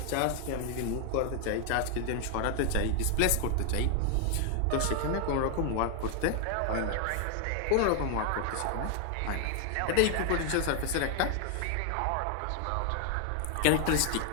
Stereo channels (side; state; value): both; different; correlation 0.00